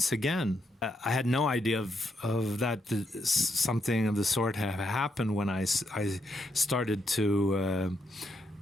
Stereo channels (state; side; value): normal; both; correlation 0.79